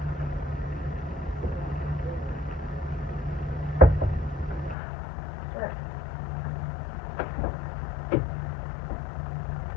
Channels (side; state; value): right; drops out; at 4.8 s